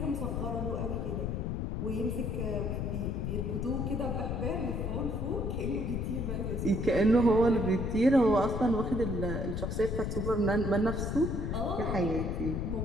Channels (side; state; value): left; noise; rumble, 1 dB below the sound